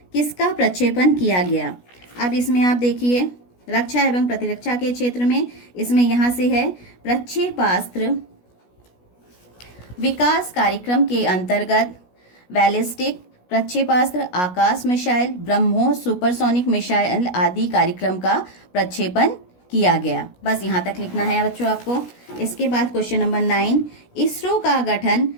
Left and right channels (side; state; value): right; late; 16 ms